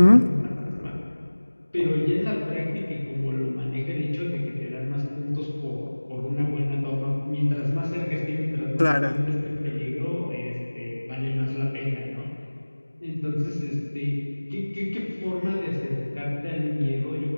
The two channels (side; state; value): both; inverted; correlation -1.00